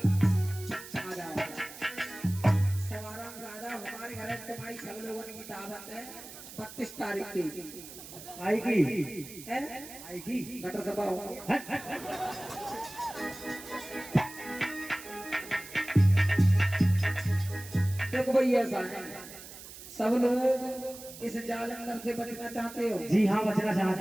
सवाराम ज्यादा हमारे घर तुम्हारी सब लोगों की दावत है 32 तारीख की। आएगी, आएगी गटर सभा होगी। देखो भाई ऐसा है, सब लोग इस जालंधर से बचना चाहते हो। जी हाँ, बचना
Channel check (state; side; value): noise; right; hiss, 14 dB below the sound